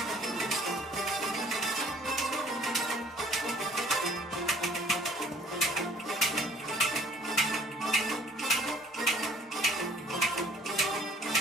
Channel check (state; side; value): normal; both; correlation 0.57